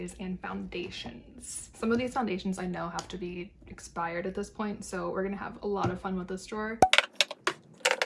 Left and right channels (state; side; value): identical; both; correlation 1.00